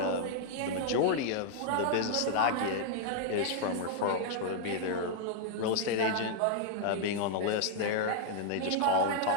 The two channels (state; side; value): different; both; correlation 0.00